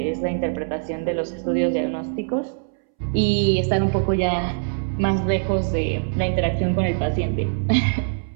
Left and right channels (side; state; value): left; silent; 64 dB below the other